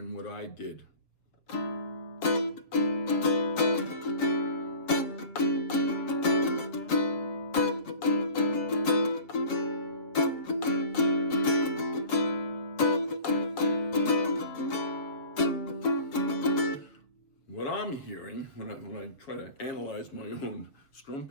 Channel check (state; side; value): late; right; 7.0 ms